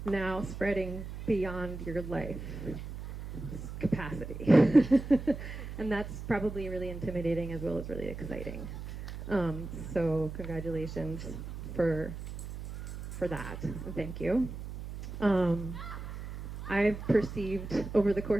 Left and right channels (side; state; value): right; noise; hum, 9 dB below the sound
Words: now spreading beyond your life capacity. And that's probably really intimidating as well as really exciting. So congratulations for that, and thank you. I've perceived over the